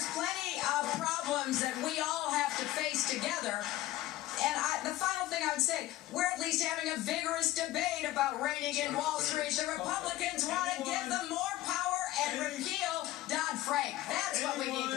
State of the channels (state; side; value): quieter; right; 15.7 dB